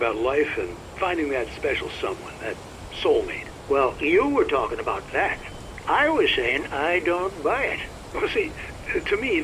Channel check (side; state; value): both; identical; correlation 1.00